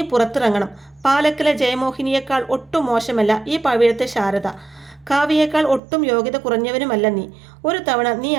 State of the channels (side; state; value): left; drops out; at 5.8 s